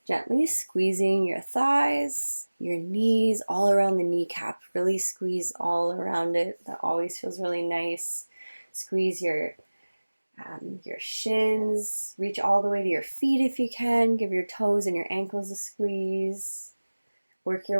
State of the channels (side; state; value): both; inverted; correlation -1.00